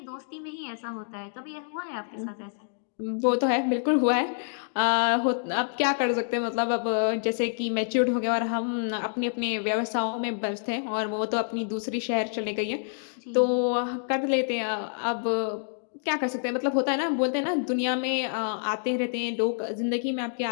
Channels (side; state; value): right; silent; digital silence